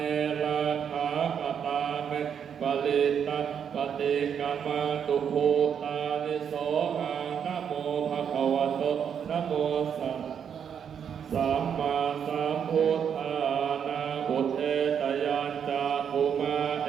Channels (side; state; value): left; quieter; 7.8 dB